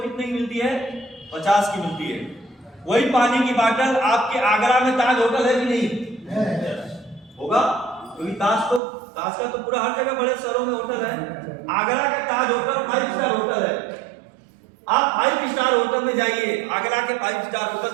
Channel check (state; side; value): drops out; left; at 8.8 s